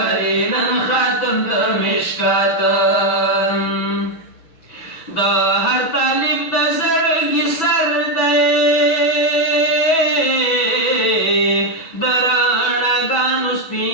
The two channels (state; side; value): late; right; 6.1 ms